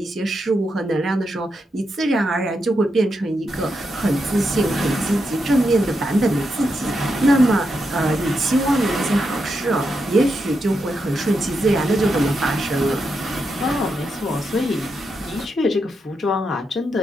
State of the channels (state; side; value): normal; both; correlation 0.84